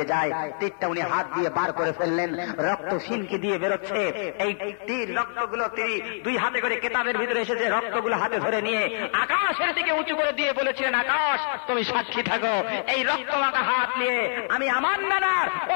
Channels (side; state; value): right; silent; 61 dB below the other